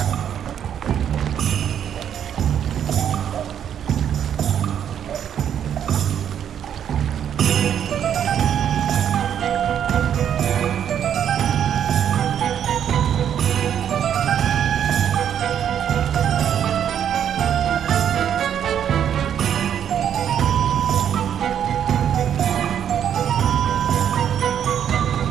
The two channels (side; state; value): left; quieter; 9.2 dB